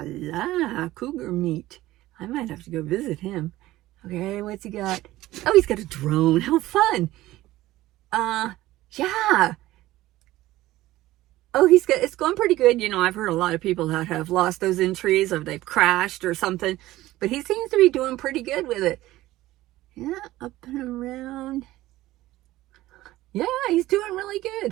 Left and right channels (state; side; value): quieter; left; 16.5 dB